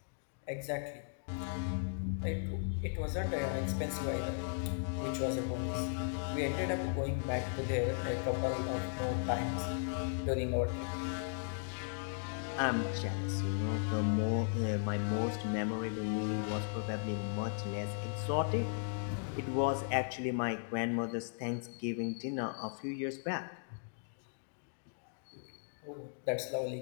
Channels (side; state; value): right; silent; digital silence